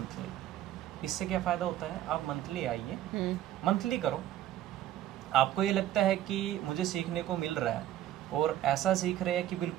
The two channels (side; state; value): left; quieter; 12.6 dB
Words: इससे क्या फ़ायदा होता है, आप मंथली आइए, मंथली करो, आपको ये लगता है कि मुझे सीखने को मिल रहा है, और ऐसा सीख रहे हैं कि